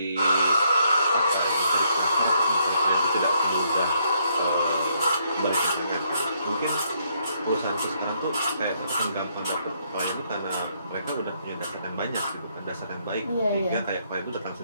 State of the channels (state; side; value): inverted; both; correlation -0.72